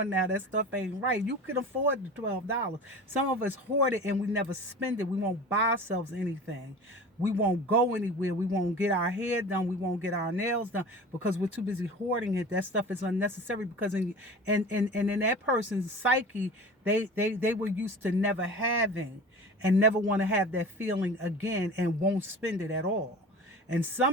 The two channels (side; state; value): both; normal; correlation 0.36